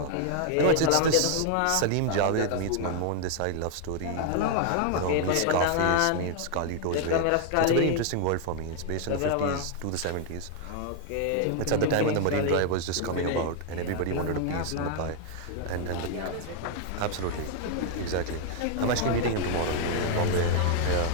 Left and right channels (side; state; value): both; different; correlation 0.00